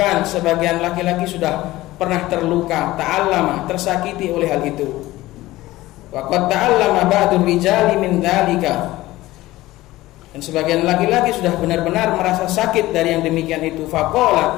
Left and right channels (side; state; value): right; quieter; 17.5 dB